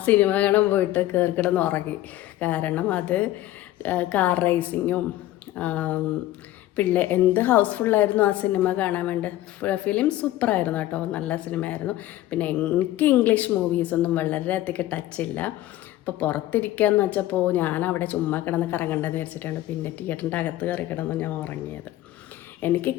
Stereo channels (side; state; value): right; quieter; 15.0 dB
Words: സിനിമ കാണാൻ പോയിട്ട് കിടന്ന് ഉറങ്ങി. കാരണം അത് കാർ റേസിങ്ങും എന്ത് ഹൗസ്ഫുള്ളായിരുന്നു ആ സിനിമ കാണാൻ വേണ്ടി. ഫിലിം സൂപ്പറായിരുന്നു കേട്ടോ, നല്ല സിനിമയായിരുന്നു. പിന്നെ എനിക്ക് ഇംഗ്ലീഷ് മൂവീസൊന്നും വളരെയധികം ടച്ചില്ല. അപ്പോൾ പുറത്തിരിക്കുകയെന്ന് വെച്ചപ്പോൾ ഞാൻ അവിടെ ചുമ്മാ കിടന്ന് കറങ്ങണ്ടെന്ന് വിചാരിച്ചിട്ടാണ് പിന്നെ തിയേറ്ററിൻ്റെ അകത്ത് കയറി കിടന്ന് ഞാൻ ഉറങ്ങിയത്. എനിക്ക്